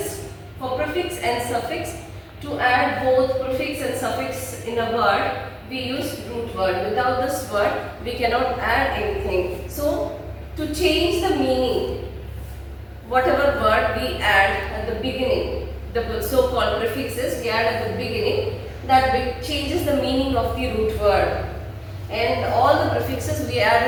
for prefix and suffix, to add both prefix and suffix in a word, we use root word. Without this word, we cannot add anything. So to change the meaning, whatever word we add at the beginning, the so-called prefixes we add at the beginning, that changes the meaning of the root word. And all the prefixes we add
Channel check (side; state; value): both; identical; correlation 1.00